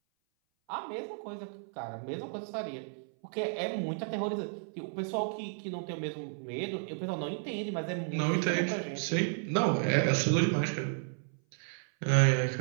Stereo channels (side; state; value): left; silent; 56 dB below the other